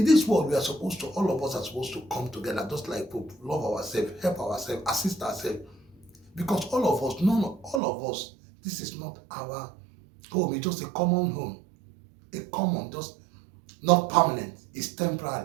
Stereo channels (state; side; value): drops out; left; at 7.8 s